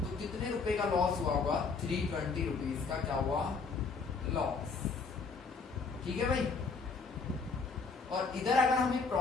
कितने रुपए का लॉस हुआ होगा, 320 रुपीज का क्या हुआ, लॉस। ठीक है भाई। और इधर अगर हमें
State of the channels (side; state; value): right; quieter; 4.7 dB